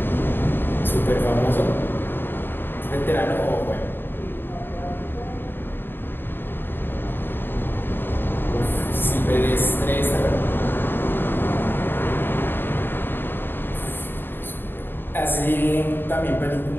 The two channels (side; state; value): right; late; 0.098 ms